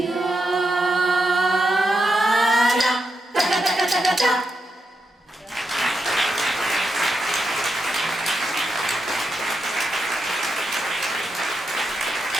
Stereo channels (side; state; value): both; normal; correlation 0.85